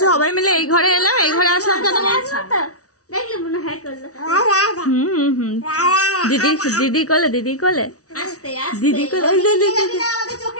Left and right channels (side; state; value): right; late; 0.66 ms